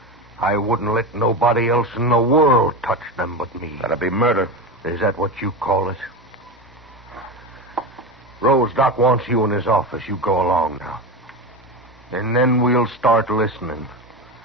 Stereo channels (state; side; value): normal; both; correlation 0.21